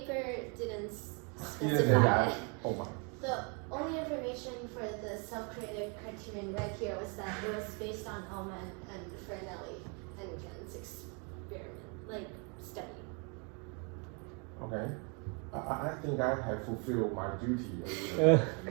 didn't Didn't say specify that. it. Oh my. The only information for the self-creative criterion right here was that it was based on Ullman and Fernelli and Ken's experiment, study. Okay. I think I have fulfilled my duty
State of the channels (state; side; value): quieter; left; 35.2 dB